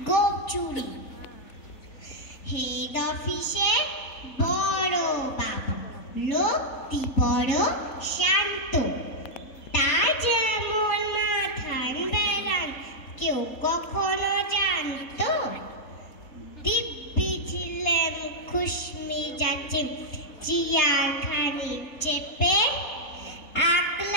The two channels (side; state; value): right; late; 4.2 ms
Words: গোপ চুরি। হেড অফিসে বড় বাবু, লোকটি বড় শান্ত, তার যেমন মাথান বেড়ান কেউ কখনো জানতো। দিব্যি ছিলেন খুশমি যাচ্ছে চেয়ার খানি চেপে,